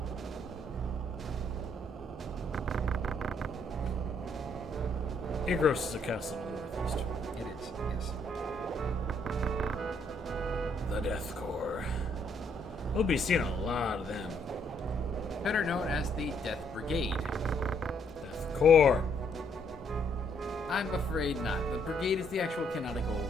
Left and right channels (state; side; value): normal; both; correlation 0.70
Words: Igros is a castle in the northeast. It is, yes. The Death Corps. We'll be seeing a lot of them. Better known as the Death Brigade. Death Corps. I'm afraid not. The Brigade is the actual canonical,